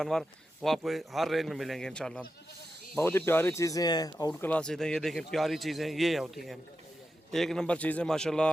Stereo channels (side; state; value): both; normal; correlation 0.89